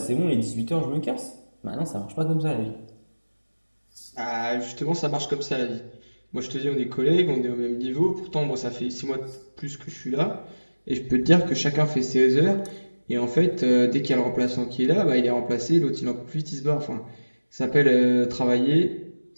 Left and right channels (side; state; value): both; inverted; correlation -1.00